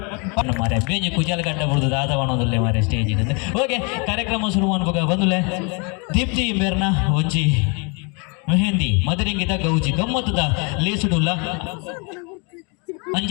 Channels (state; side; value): quieter; right; 33.6 dB